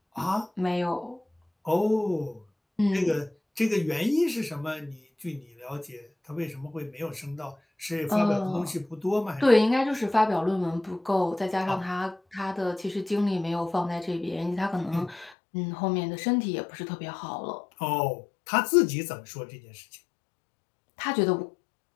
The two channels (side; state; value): right; drops out; at 15.4 s